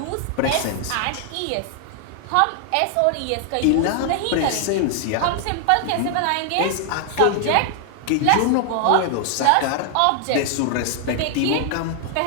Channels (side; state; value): both; different; correlation 0.00